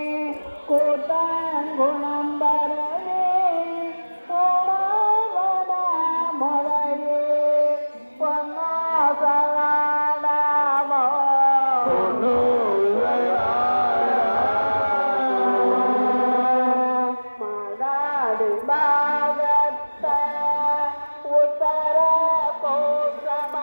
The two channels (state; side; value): inverted; both; correlation -1.00